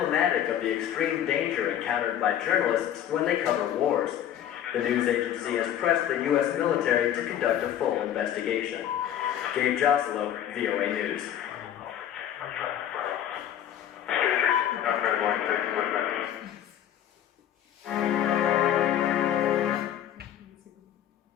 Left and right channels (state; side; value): quieter; right; 10.7 dB